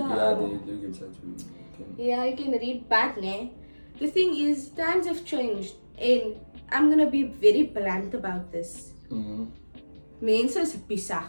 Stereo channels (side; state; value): both; inverted; correlation -1.00